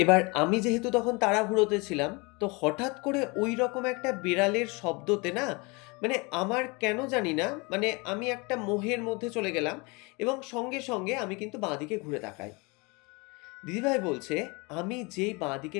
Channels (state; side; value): quieter; right; 28.0 dB